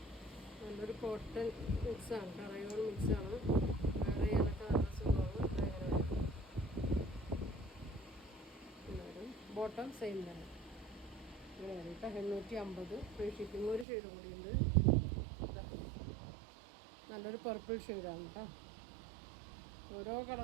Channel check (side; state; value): left; drops out; at 13.9 s